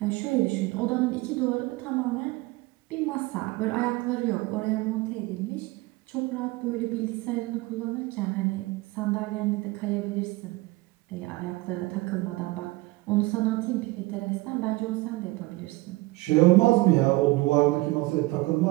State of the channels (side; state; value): left; quieter; 21.5 dB